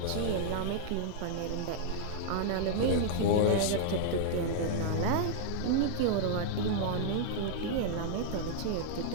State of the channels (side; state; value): both; different; correlation -0.01